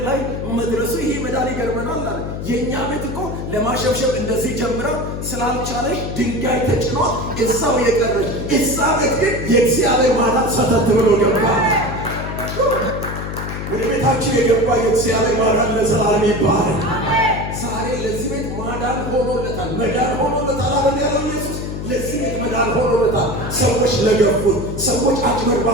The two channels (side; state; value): left; noise; hum, 6 dB below the sound